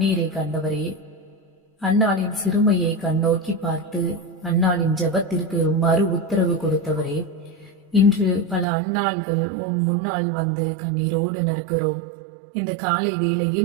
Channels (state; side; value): drops out; left; at 8.7 s